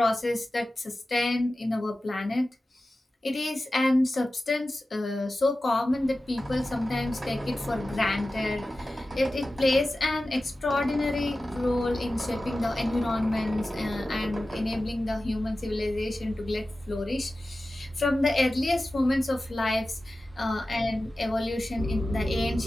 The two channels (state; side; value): normal; both; correlation 0.95